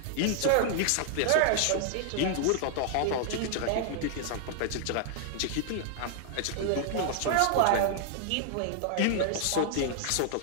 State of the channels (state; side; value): different; both; correlation 0.00